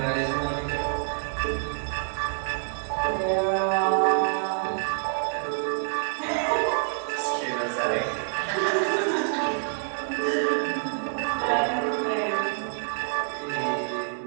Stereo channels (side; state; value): left; silent; digital silence